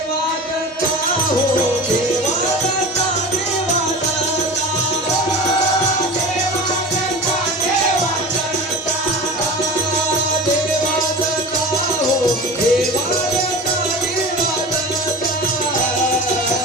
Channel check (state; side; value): normal; both; correlation 0.33